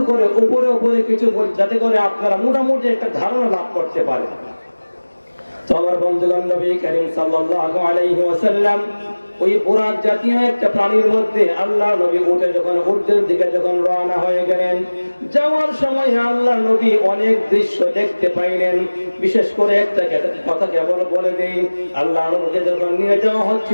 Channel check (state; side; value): inverted; both; correlation -1.00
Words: করে উপরে উপরে কিছু বলি, যাতে করে আপনারা মোটামুটি একটা ধারণা লাভ করতে পারে। তো আমার বন্ধুগণ, নবী করিম সাল্লাল্লাহু আলাইহি ওয়াসাল্লাম ওই বুরাক জাতীয় একটা প্রাণীর মধ্যে আল্লাহ নবী উঠে যখন ঊর্ধ্বের দিকে যখন রওনা হয়ে গেলেন, যাওয়ার সময় আল্লাহ নবী অনেক দৃশ্য দেখতে পাইলেন। বিশেষ করে একটা কথা কেবল বলে দেই, আল্লাহ নবীকে যখন নিয়ে যাওয়া